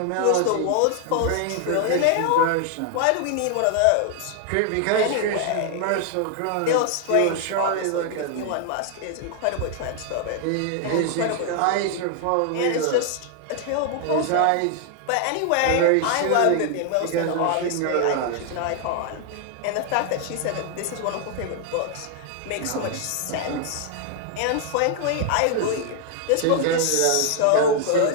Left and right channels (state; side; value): different; both; correlation 0.00